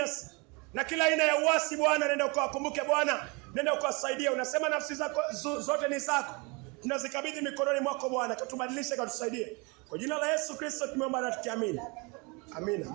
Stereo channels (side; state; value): left; quieter; 29.2 dB